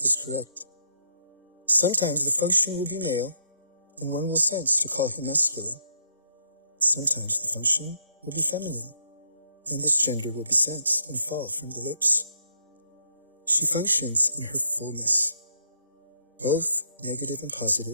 correct. Sometimes the function will be male, and one will sense to call him masculine. Sometimes the function will be feminine, and this gender will be sensed and fall from the lips. She functions in her fullness. Both negative and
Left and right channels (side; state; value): both; inverted; correlation -0.73